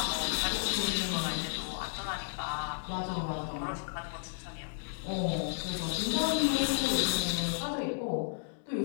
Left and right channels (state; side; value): silent; right; digital silence